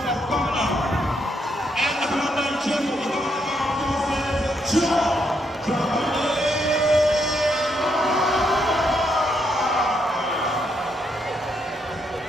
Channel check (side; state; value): both; normal; correlation 0.77